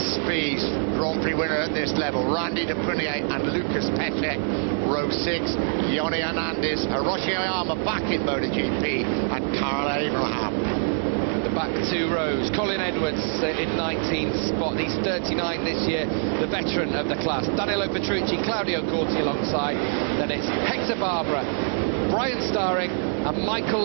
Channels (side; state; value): left; silent; 62 dB below the other